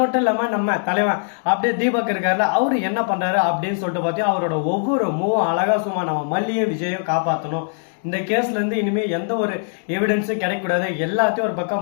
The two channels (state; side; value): silent; right; digital silence